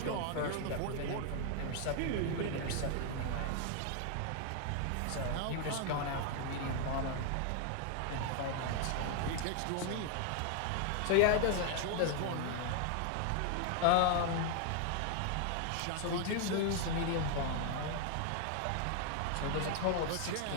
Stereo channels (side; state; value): both; different; correlation 0.00